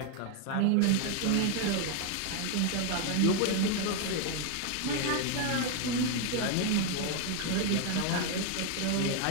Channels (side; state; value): both; different; correlation 0.01